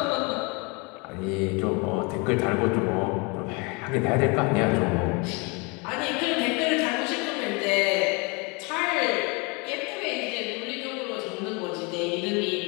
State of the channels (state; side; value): quieter; right; 29.8 dB